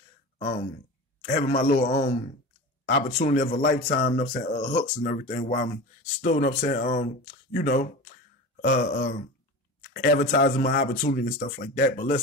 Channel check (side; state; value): both; normal; correlation 0.31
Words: having my little opportunity of a lifetime. You know what I'm saying, hooks and everything while I'm still, you know what I'm saying, you know, advertising my opportunity and stuff like that. But